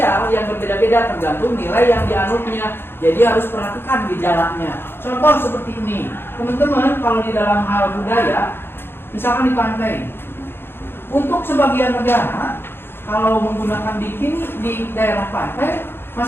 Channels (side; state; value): right; late; 0.11 ms